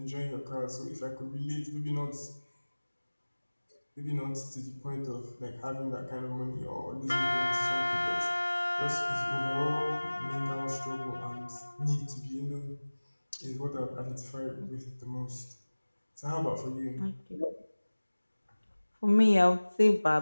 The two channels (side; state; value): both; inverted; correlation -1.00